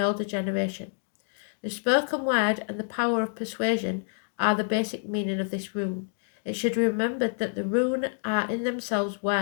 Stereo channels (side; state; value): right; silent; 60 dB below the other